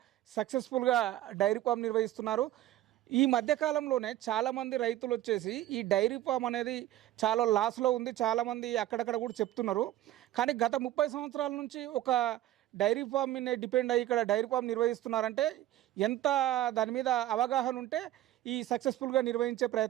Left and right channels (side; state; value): left; quieter; 14.0 dB